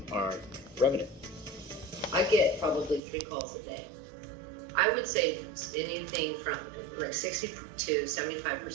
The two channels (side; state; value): left; drops out; at 3.0 s